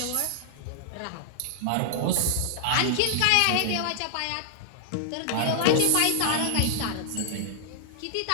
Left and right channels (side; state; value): both; different; correlation -0.01